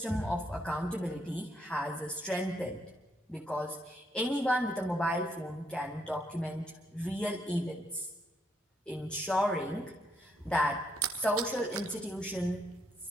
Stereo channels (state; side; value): normal; both; correlation 0.75